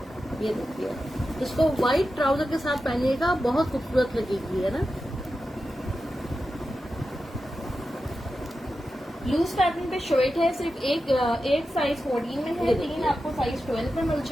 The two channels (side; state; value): both; normal; correlation 0.91